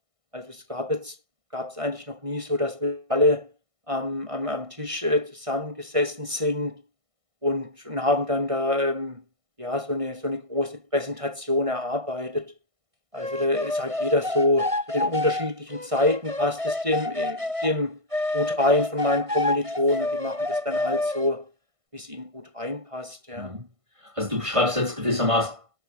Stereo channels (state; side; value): late; left; 1.5 ms